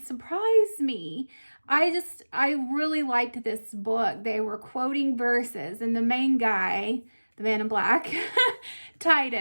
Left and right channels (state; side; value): inverted; both; correlation -1.00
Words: me. I really liked this book. They were quoting verses, and the main guy, the man in black,